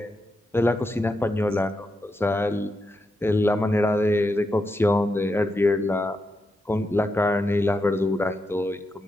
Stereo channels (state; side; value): normal; both; correlation 0.85